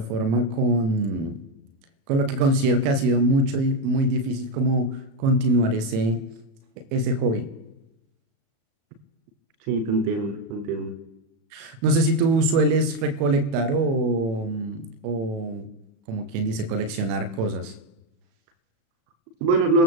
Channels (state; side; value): late; left; 35 ms